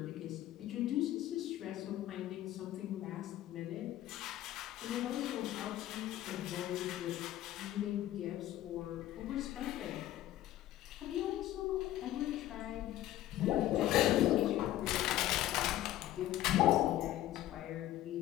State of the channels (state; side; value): quieter; right; 13.8 dB